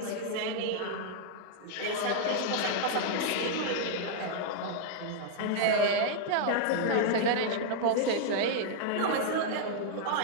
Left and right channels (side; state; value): both; different; correlation 0.00